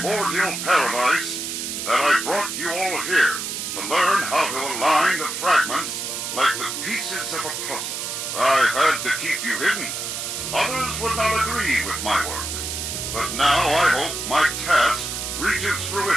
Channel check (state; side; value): noise; right; hiss, 4 dB below the sound